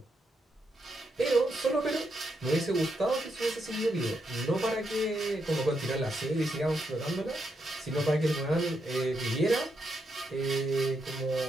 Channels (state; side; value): normal; both; correlation 0.81